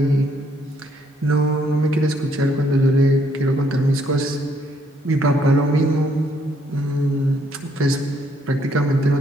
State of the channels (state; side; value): normal; both; correlation 0.69